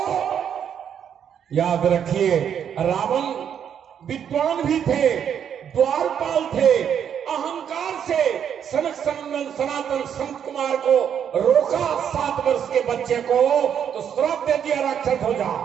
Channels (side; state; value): left; quieter; 8.5 dB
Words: याद रखिए, रावण विद्वान भी थे, द्वारपाल थे, अहंकार से सनक सनंदन सनातन संत कुमार को रोका 7 वर्ष के बच्चे को, तो श्राप दे दिया राक्षस हो जा।